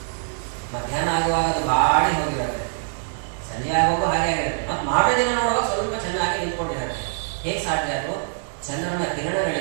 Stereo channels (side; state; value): left; silent; digital silence